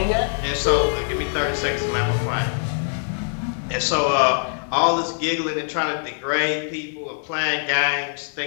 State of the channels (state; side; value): silent; right; digital silence